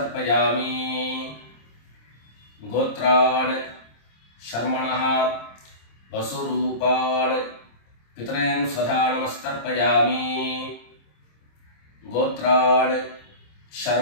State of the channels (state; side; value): late; right; 26 ms